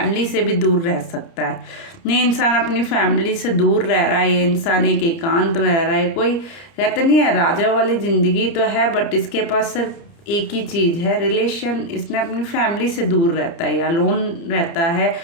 से भी दूर रह सकता है। ये इंसान अपनी फैमिली से दूर रह रहा है, ये इंसान एक एकांत में रह रहा है। कोई कहते नहीं है राजा वाली ज़िंदगी तो है, बट इसके पास सिर्फ एक ही चीज़ है, रिलेशन। इसने अपनी फैमिली से दूर रहता है या लोन रहता है,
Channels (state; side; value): late; right; 29 ms